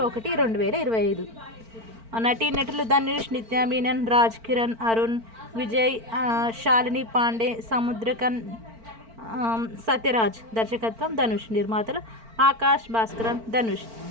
1, 2025. నటీనటులు ధనుష్, నిత్యా మీనన్, రాజ్ కిరణ్, అరుణ్ విజయ్, శాలిని పాండే, సముద్రకన్, సత్యరాజ్. దర్శకత్వం ధనుష్. నిర్మాతలు ఆకాష్ భాస్కరన్, ధనుష్.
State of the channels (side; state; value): left; late; 4.4 ms